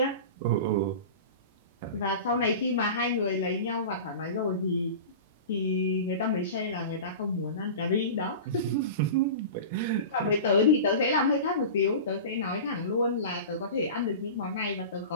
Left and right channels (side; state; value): both; inverted; correlation -0.32